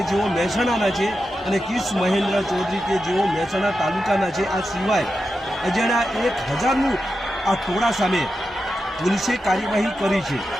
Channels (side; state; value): both; normal; correlation 0.89